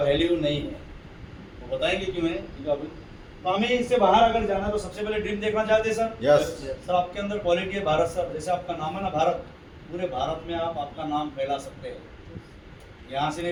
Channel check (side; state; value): both; identical; correlation 1.00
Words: नहीं है। वो बताएंगे क्यों है, क्योंकि अभी तो हमें इससे बाहर अगर जाना है तो सबसे पहले ड्रीम देखना चाहते हैं सर। यस। सर आपके अंदर क्वालिटी है भारत सर, जैसे आपका नाम है ना भारत, पूरे भारत में आप आपका नाम फैला सकते हैं। यहाँ से